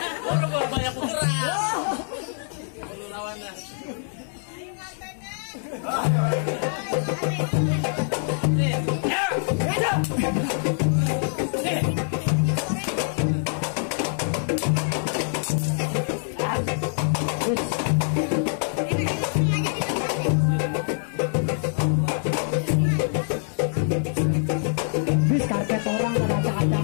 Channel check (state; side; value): silent; right; 62 dB below the other